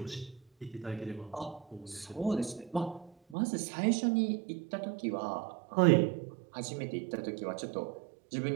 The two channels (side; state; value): left; drops out; at 3.4 s